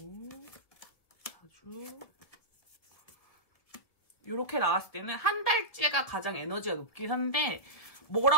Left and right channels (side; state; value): right; late; 1.7 ms